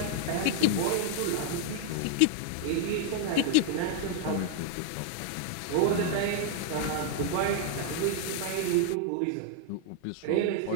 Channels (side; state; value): both; different; correlation 0.00